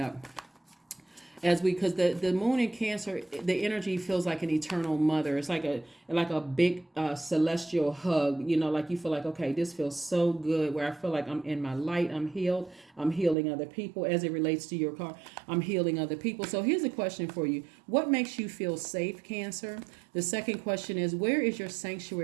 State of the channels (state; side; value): drops out; left; at 13.4 s